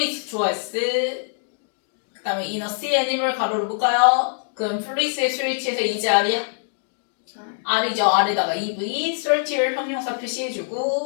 좋아했을 그 다음에 in a sea animal 가로를 묶어요. 그럼 fluids의 스위치에서 이제 R이야? R이죠. R에다가 EV, certier 형용사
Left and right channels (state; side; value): silent; right; digital silence